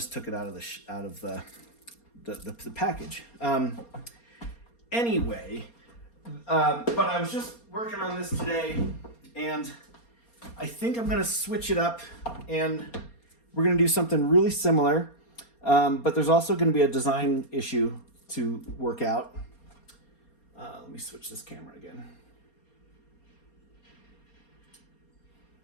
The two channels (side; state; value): right; late; 4.3 ms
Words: took it out of the package. Anyway, but I was just working on this today, and I think I'm going to switch it up, and we're going to do something really similar. But there's also going to be a design issue to work out. Let me switch this camera again.